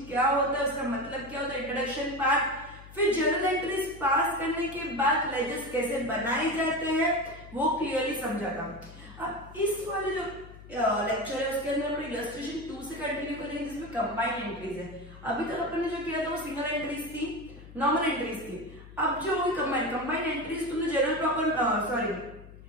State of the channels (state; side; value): noise; left; hum, 17 dB below the sound